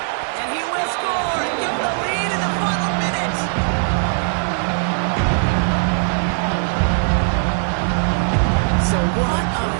And he will score and give him the lead in the final minute. So what a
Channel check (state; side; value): silent; left; 62 dB below the other